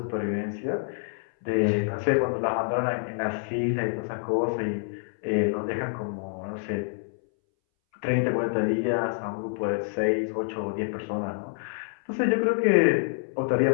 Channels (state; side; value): silent; right; 60 dB below the other